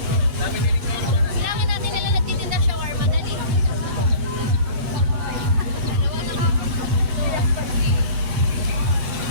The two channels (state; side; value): late; left; 7.3 ms